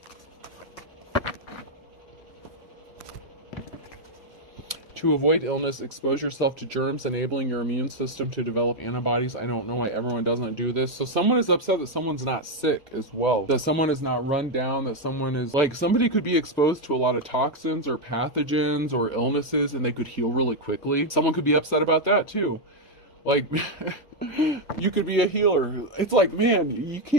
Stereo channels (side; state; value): right; late; 1.4 ms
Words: To avoid illness, expose yourself to germs, enabling your immune system to develop antibodies. I don't know why everyone doesn't do this. So someone is upset that someone's not sick as well. That someone is not run down, that someone is, like, somebody could be exposed to a lot of toxins or pathogens or illnesses and they could heal really quickly. Someone could be upset about that too. Like, you could be a healer. It's like, man, you